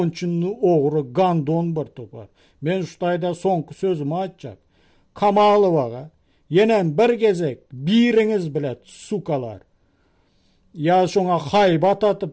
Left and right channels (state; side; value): identical; both; correlation 1.00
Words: oğru gandon bir topar. Ben şutayda sonku sözümü açacak. Kamalıvaga yenen bir gezek biriniz bilet sukalar. Ya şoňa haybat